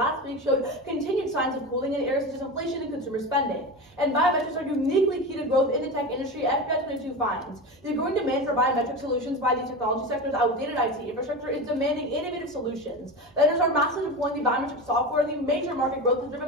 week showed continued signs of cooling in areas such as inflation and consumer spending. And biometrics are uniquely key to growth in the tech industry. FBI 22 finds the growing demand for biometric solutions by the technology sector's outdated IT infrastructure is demanding innovative solutions. Vendors are massively deploying the biometric software. The major market growth is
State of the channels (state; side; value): noise; right; hum, 30 dB below the sound